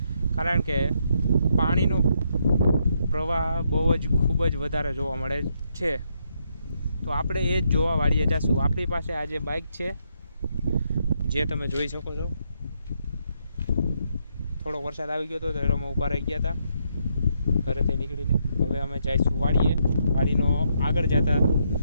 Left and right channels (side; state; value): both; inverted; correlation -0.77